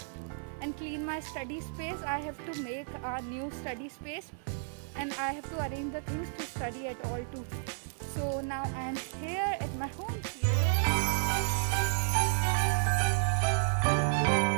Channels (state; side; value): silent; left; digital silence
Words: and clean my study space. I have to make a new study space and I have to arrange the things to study at all too. So now I am here at my home.